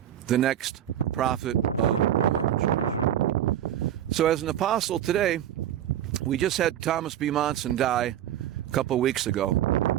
the next prophet of the Mormon Church. So as an apostle today, we just had Thomas B. Monson die a couple weeks ago.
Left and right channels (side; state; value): left; quieter; 11.2 dB